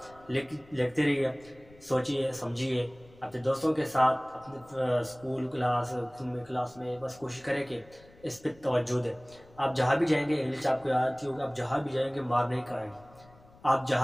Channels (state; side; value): noise; left; rumble, 25 dB below the sound